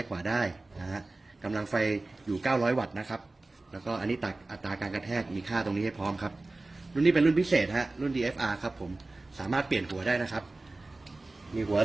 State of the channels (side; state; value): left; quieter; 3.1 dB